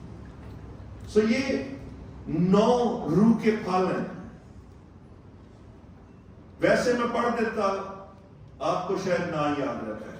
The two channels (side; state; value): both; identical; correlation 1.00